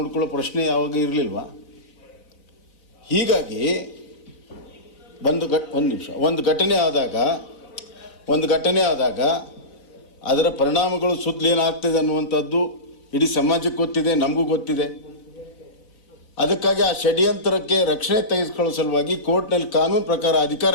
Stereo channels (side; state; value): right; late; 4.0 ms